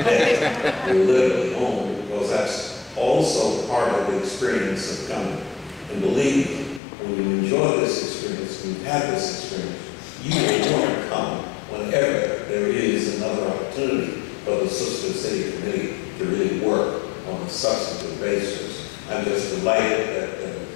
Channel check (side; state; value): right; drops out; at 6.8 s